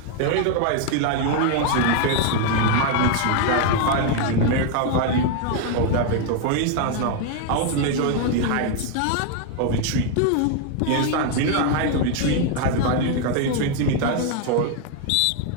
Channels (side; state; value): both; different; correlation 0.01